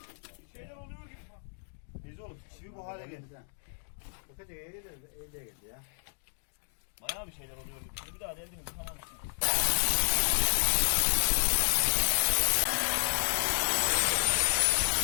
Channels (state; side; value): silent; right; digital silence